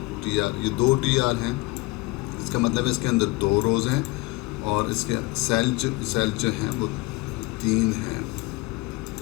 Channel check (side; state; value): right; quieter; 22.8 dB